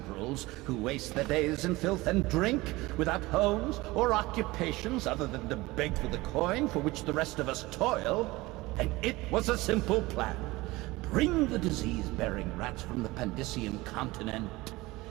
who waste their days in filth and drink, without homes or occupations other than to beg for the coin for which the rest of us toil. And it was a simple plan. Bring the disease-bearing rats from the Pandician continent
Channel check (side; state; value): left; quieter; 20.6 dB